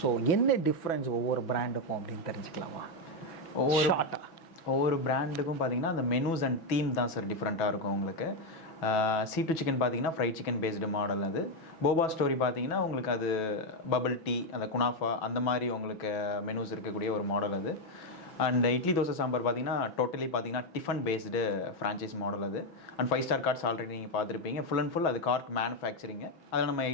ஸோ என்ன டிஃப்ரென்ஸ் ஒவ்வொரு பிராண்டுக்கும் அப்படின்னு தெரிஞ்சுக்கலாமா? ஒவ்வொரு பிராண்டுக்கும் பார்த்தீங்கன்னா அந்த மெனூஸ் அண்ட் தீம் தான் சார் டிஃப்ரெண்ட்டாக இருக்கும் உங்களுக்கு. C2 சிக்கன் பார்த்தீங்கன்னா ஃப்ரைட் சிக்கன் பேஸ்டு மாடல். அது போபா ஸ்டோரி பார்த்தீங்கன்னா உங்களுக்கு அது பபிள் டீ, அந்த குனாஃபா அந்த மாதிரி உங்களுக்கு மெனூஸ் இருக்கக்கூடிய ஒரு மாடல் அது. அண்ட் இட்லி தோசை சாம்பார் பார்த்தீங்கன்னா டோட்டலி பார்த்தீங்கன்னா டிஃபன் பேஸ்டு ஃப்ரான்ச்சைஸ் மாடல் அது. அண்ட் 5 star கார்ட்ஸ் ஆல்ரெடி நீங்கள் பார்த்துருப்பீங்க. ஃபுல் அண்ட் ஃபுல் அது கார்ட் மேனுஃபேக்சரிங்கு. அதில் நம்ம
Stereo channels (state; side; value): late; right; 6.1 ms